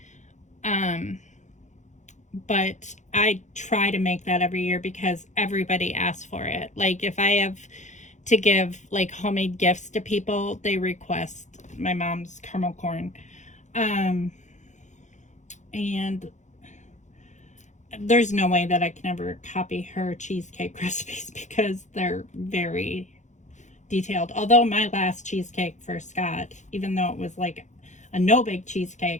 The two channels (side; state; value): right; late; 0.35 ms